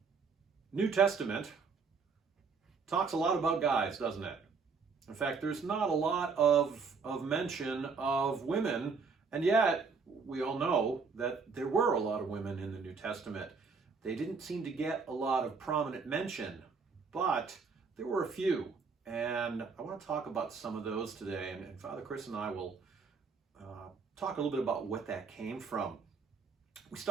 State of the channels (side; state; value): left; quieter; 5.0 dB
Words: New Testament talks a lot about guys, doesn't it? In fact, there's not a lot of mention of women, and yet we all know that there were a lot of women in the New Testament. They didn't seem to get a lot of prominent mention, but there were a few, and I want to talk about some of those today, and Father Chris and I will talk a little bit about what that came from. We